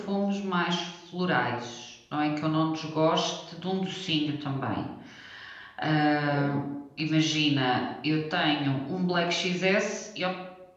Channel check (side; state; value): both; identical; correlation 1.00